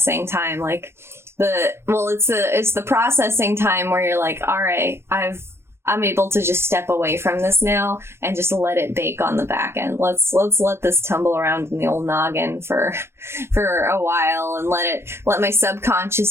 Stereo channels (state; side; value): late; left; 0.12 ms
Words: time, like it's the processing time where you're like, all right, I'm able to just step away from this now and just let it bake on the back end. Let's let this tumble around in the old noggin for a while and let my